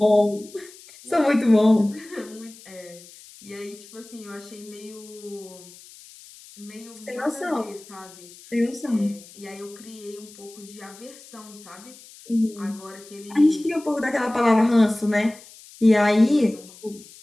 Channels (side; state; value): left; noise; hiss, 21 dB below the sound